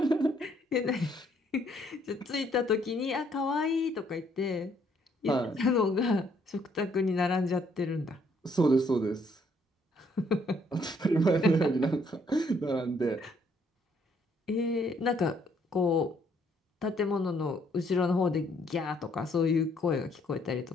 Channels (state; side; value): normal; both; correlation 0.68